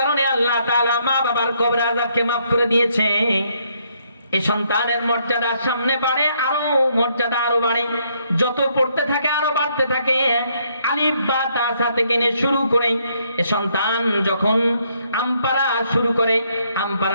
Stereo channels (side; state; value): both; inverted; correlation -0.71